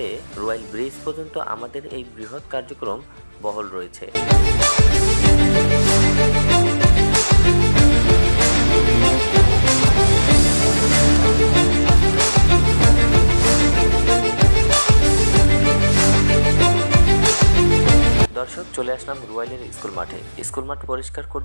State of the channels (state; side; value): inverted; both; correlation -1.00